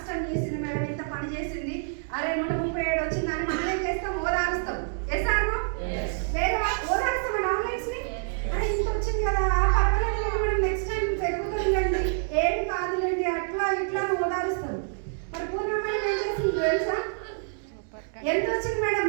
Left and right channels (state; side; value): silent; left; digital silence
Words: చేసింది మేడం, ఇంత పని చేసింది, అరే 137 వచ్చిందని మనం ఏం చేస్తాం? ఓదారుస్తాం. ఎసాను వేరే ఓదారుస్తాం మన ఆన్లైన్స్ ని. అరే ఇంత వచ్చింది కదా, పర్వాలేదు మేడం, నెక్స్ట్ టైం పెరుగుతుందండి, ఏం కాదులేండి, అట్లా ఇట్లా ఓదారుస్తాం. మరి పూర్ణ మేడం ఏం చేసింది తెలుసా? ఎంత వచ్చింది మేడం?